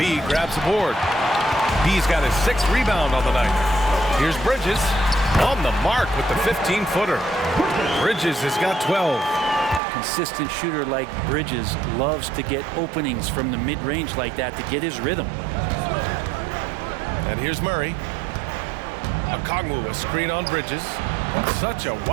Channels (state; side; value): drops out; left; at 9.8 s